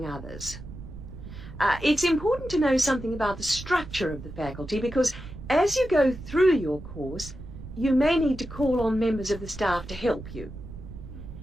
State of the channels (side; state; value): right; noise; rumble, 13 dB below the sound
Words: others. It's important to know something about the structure of the faculty because as you go through your course, you may need to call on members of the staff to help you.